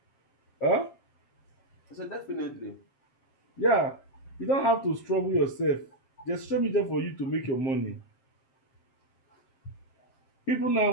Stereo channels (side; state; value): right; late; 7.6 ms